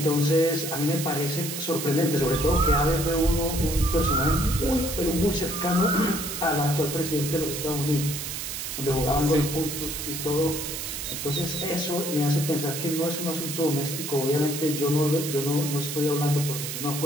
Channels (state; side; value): noise; right; hiss, 5 dB below the sound